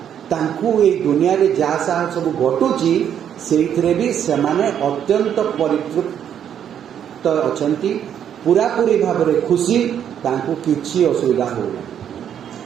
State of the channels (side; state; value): left; quieter; 9.2 dB